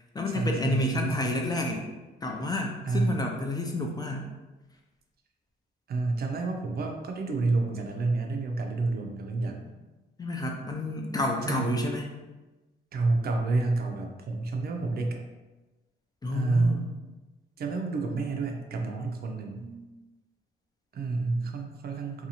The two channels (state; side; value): normal; both; correlation 0.73